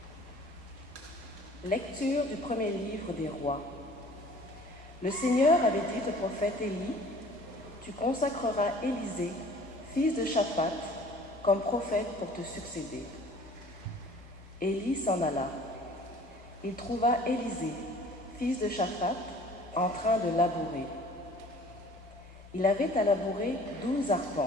Lecture du premier livre des Rois. Le Seigneur avait dit au prophète Élie, « Tu consacreras Élisée, fils de Shaphat, comme prophète pour te succéder. » Élie s'en alla. Il trouva Élisée, fils de Shaphat, en train de labourer. Il avait à labourer 12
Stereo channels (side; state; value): both; normal; correlation 0.50